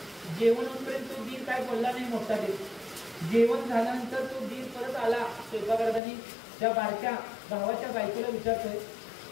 जेवण होईपर्यंत तो दीर काय बोलला नाही मोठा दीर. जेवण झाल्यानंतर तो दीर परत आला स्वयंपाकघरात त्या बारक्या भावाच्या बायकोला विचारतोय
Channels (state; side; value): drops out; right; at 6.0 s